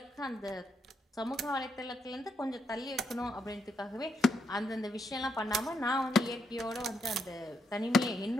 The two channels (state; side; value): normal; both; correlation 0.78